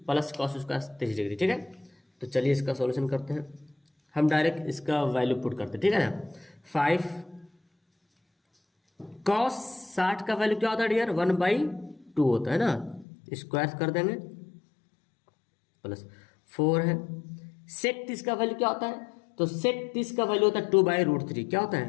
plus cos square 30 degree. ठीक है, तो चलिए इसका सॉल्यूशन करते हैं। हम डायरेक्ट इसका वैल्यू पुट करते हैं। ठीक है ना, 5 cos 60 का वैल्यू क्या होता है डियर 1/2 होता है ना, स्क्वायर कर देंगे प्लस 4 है। sec 30 का वैल्यू क्या होता है, तो sec 30 का वैल्यू होता है 2/√3। क्या होता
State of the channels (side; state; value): right; drops out; at 13.1 s